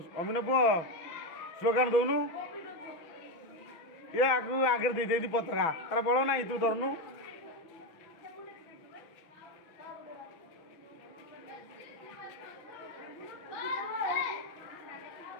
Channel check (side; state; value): right; late; 6.0 ms